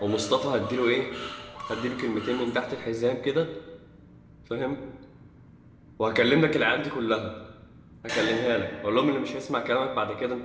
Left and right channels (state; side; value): identical; both; correlation 1.00